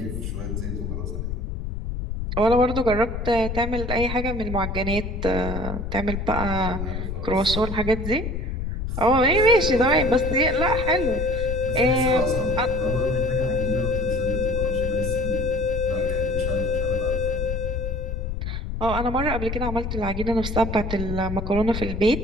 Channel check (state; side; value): noise; left; rumble, 4 dB below the sound